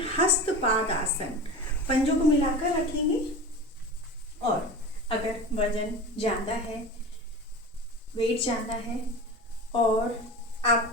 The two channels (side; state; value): both; normal; correlation 0.31